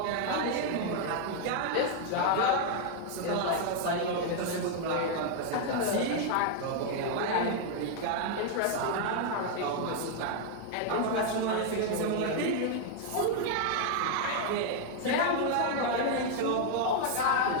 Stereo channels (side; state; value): both; different; correlation 0.00